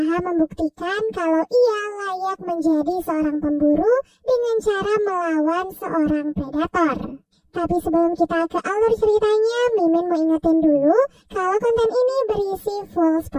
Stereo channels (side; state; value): both; identical; correlation 1.00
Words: membuktikan kalau ia layak menjadi seorang pemburu dengan cara melawan seorang predator. Tapi sebelum kita ke alur ceritanya, Mimin mau ingetin dulu kalau konten ini berisi full